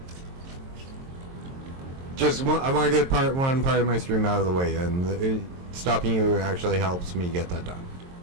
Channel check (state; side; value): late; left; 22 ms